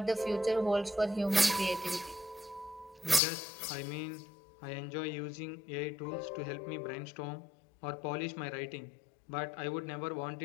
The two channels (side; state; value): right; drops out; at 3.2 s